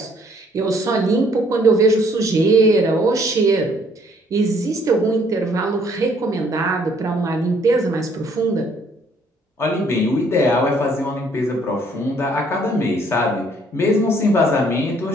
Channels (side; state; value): both; normal; correlation 0.63